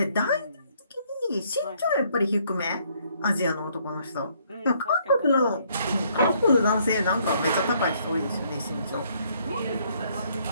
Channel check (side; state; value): both; inverted; correlation -0.67